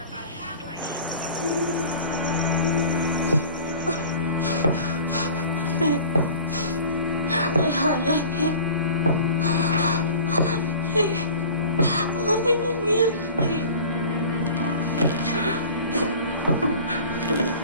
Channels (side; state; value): both; inverted; correlation -0.42